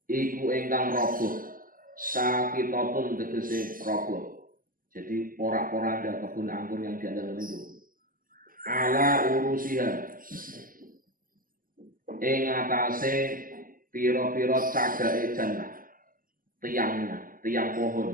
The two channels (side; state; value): left; late; 0.41 ms